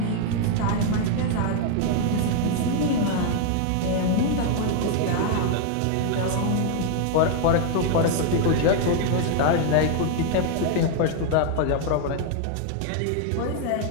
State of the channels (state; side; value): different; both; correlation 0.00